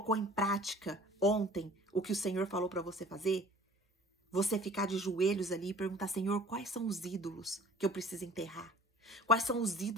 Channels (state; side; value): normal; both; correlation 0.49